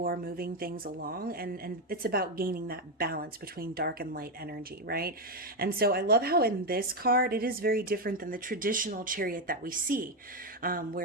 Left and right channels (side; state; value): both; normal; correlation 0.07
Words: moving things along, and it's about gaining that balance between dark and light energy, right? And so I love how in this card, it is very different than the traditional Chariot that we see,